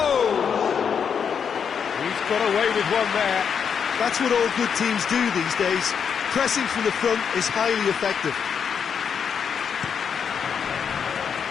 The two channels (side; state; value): right; quieter; 7.1 dB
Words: He's got away with one there. That's what all good teams do these days. Pressing from the front is highly effective.